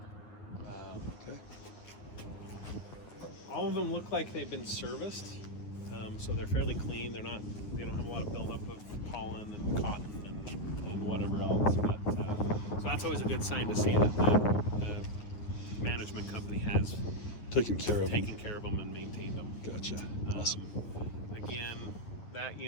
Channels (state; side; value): late; right; 9.6 ms